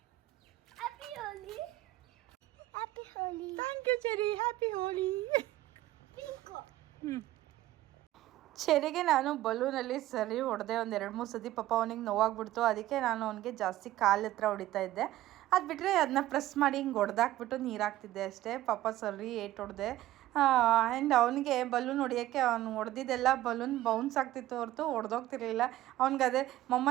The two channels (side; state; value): left; quieter; 15.1 dB